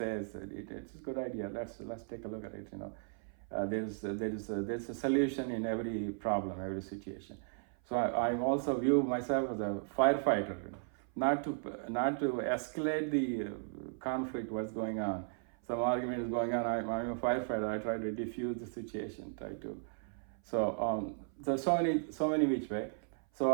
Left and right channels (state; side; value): silent; left; 54 dB below the other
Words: it's a good idea. Let's take a look at it. There's a solution in every problem, every situation. So I also view myself as a firefighter, not to escalate the conflict, what's going on. Some argument is going on, I'm a firefighter, I try to diffuse the situation, so many which way.